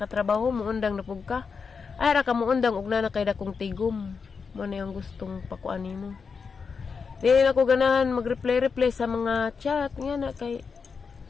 muundang na pug ka ay ra ka muundang og na kay dakong tigom mo na yung gustong pakuan mo. Di na ko ganahan mag-reply sa mga chat nga na kay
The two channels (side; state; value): right; quieter; 5.5 dB